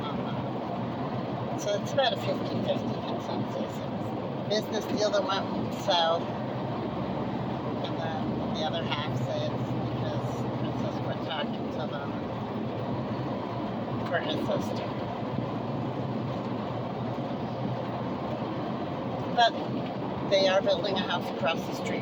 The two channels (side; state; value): both; identical; correlation 1.00